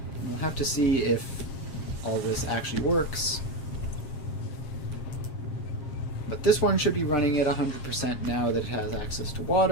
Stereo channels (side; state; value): right; late; 7.5 ms